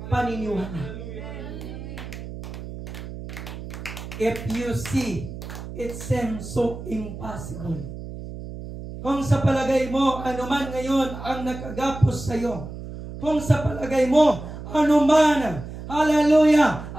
paniniwala. If you see, it seems so impossible. Kung sa palagay mo, anuman ngayon ang nakagapos sa iyo, kung sa palagay mo, anuman, hallelujah,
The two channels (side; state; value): right; noise; hum, 10 dB below the sound